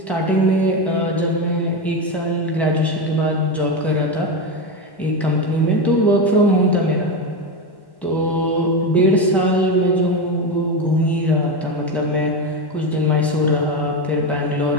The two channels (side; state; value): right; late; 1.1 ms